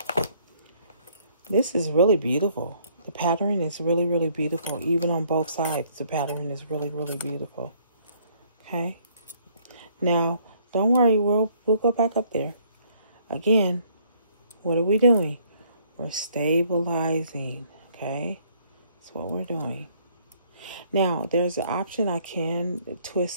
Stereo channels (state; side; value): inverted; both; correlation -0.64